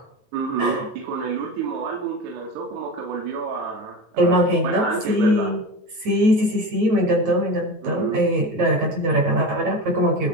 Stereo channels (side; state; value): left; late; 9.2 ms